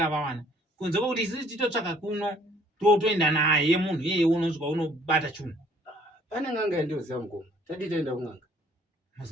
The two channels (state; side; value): normal; both; correlation 0.59